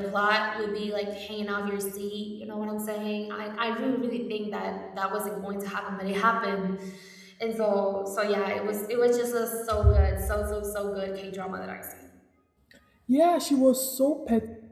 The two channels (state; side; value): identical; both; correlation 1.00